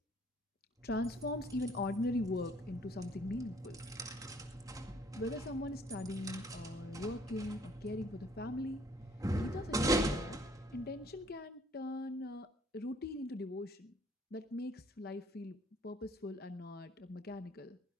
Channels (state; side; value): normal; both; correlation 0.60